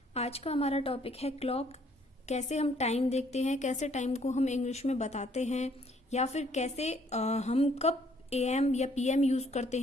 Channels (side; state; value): both; normal; correlation 0.64